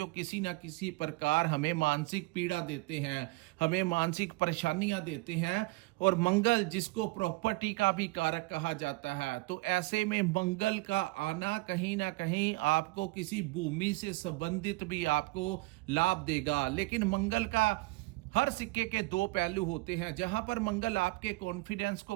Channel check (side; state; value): left; quieter; 23.0 dB